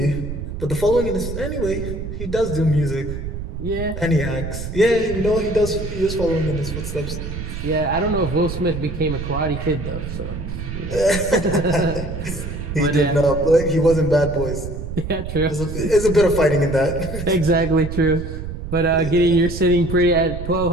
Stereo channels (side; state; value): right; noise; rumble, 7 dB below the sound